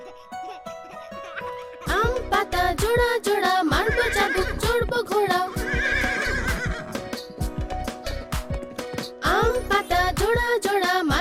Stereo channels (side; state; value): both; identical; correlation 1.00